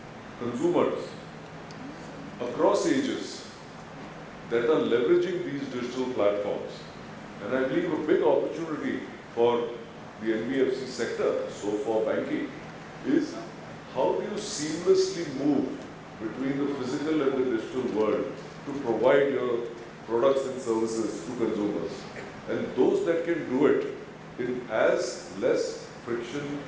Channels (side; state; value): both; identical; correlation 1.00